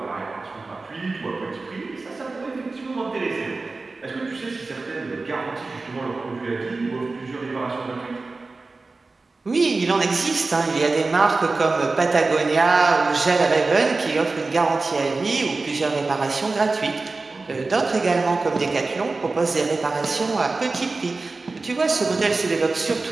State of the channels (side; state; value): left; quieter; 3.7 dB